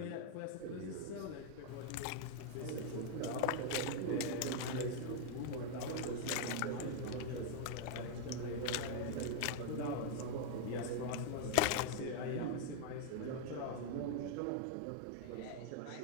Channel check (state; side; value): different; both; correlation 0.00